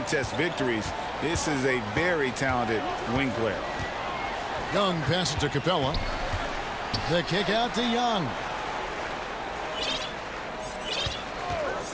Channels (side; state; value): both; identical; correlation 1.00